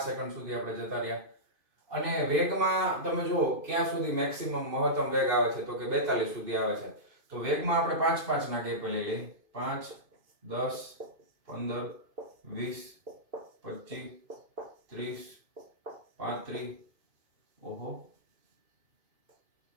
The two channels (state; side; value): late; left; 2.5 ms